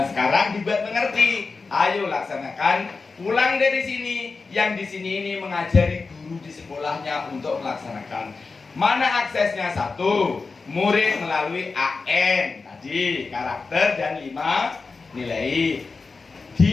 sekarang dibuat mengerti. Ayo laksanakan. Pulang dari sini, yang di sini ini mengajari guru di sekolahnya untuk melaksanakan. Mana aksesnya? 1, murid melalui AN tadi, karakter dan 5 nilai.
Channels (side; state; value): right; quieter; 4.3 dB